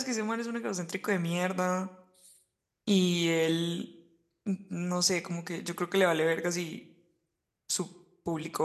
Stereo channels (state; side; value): identical; both; correlation 1.00